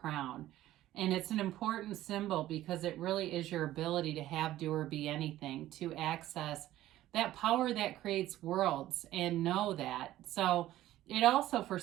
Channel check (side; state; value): left; quieter; 14.4 dB